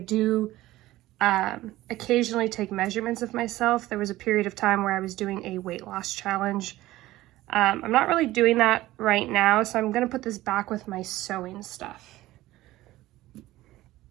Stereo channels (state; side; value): quieter; left; 16.5 dB